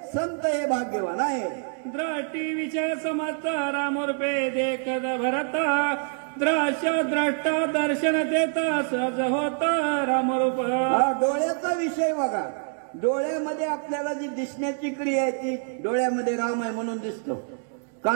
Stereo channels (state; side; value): silent; left; 61 dB below the other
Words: संत हे भाग्यवान आहे. द्रष्टी विषय समर्थ रामरूपे देखत भरत, द्रश्य द्रष्टा दर्शन देता सहज होत रामरूप. डोळ्याचा विषय बघा. डोळ्यामध्ये आपल्याला जी दिसण्याची क्रिया आहे ती डोळ्यामध्ये राम आहे म्हणून दिसतो,